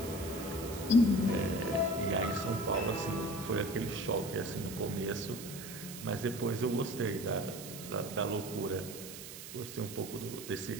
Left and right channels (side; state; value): right; noise; hiss, 11 dB below the sound